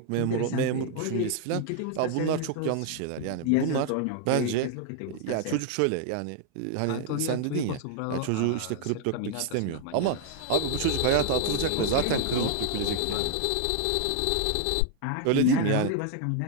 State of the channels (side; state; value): both; different; correlation 0.00